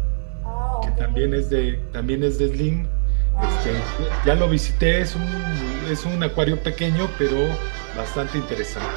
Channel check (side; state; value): left; silent; 64 dB below the other